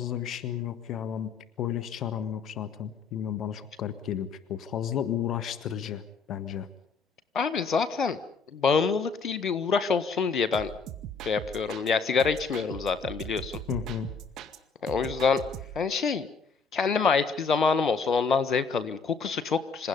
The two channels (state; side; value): quieter; right; 5.1 dB